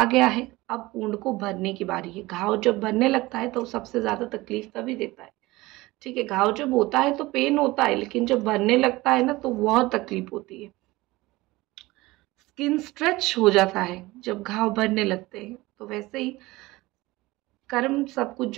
गया है, अब ऊंड को भरने की बारी है। घाव जब भरने लगता है तो सबसे ज्यादा तकलीफ तभी देता है। ठीक है, घाव जब होता है तो पेन होता है, लेकिन जब भरने लगता है ना तो बहुत तकलीफ होती है। स्किन स्ट्रेच हो जाता है जब घाव भरने लगते हैं। तो वैसे ही कर्म सब कुछ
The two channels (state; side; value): quieter; left; 20.2 dB